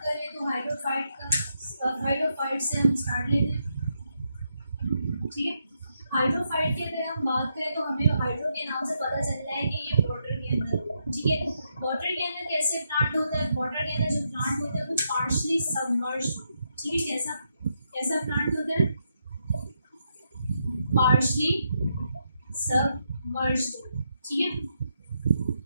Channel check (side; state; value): both; inverted; correlation -0.81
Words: करें तो हाइड्रोफाइट से हम स्टार्ट लेते हैं। ठीक है, हाइड्रोफाइट की अगर हम बात करें तो हमें हाइड्रो के नाम से पता चलता है कि ये वाटर के अंदर होता है। ठीक है, वाटर के अंदर कैसे प्लांट होता है, वाटर के अंदर जो प्लांट होता है वो पार्शली सबमर्ज्ड। ठीक है, कैसा कैसा प्लांट होता है, पार्शली सबमर्ज्ड। ठीक है,